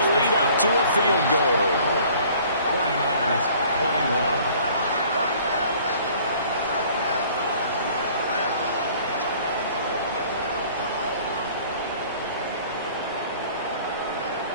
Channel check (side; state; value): both; inverted; correlation -0.53